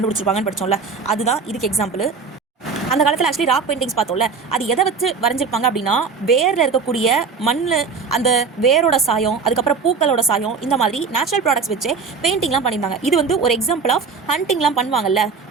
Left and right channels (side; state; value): left; quieter; 5.2 dB